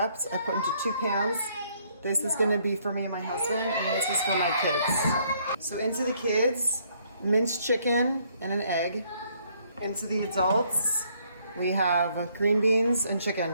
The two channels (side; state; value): both; inverted; correlation -0.68